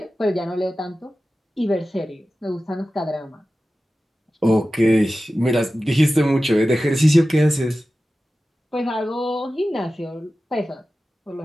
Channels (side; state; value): both; normal; correlation 0.94